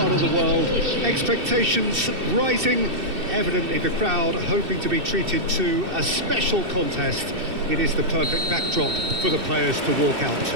of the world. Expectations rising, evidently the crowd hoping to be treated to a special contest. It is the perfect backdrop for the players to walk out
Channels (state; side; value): late; left; 2.6 ms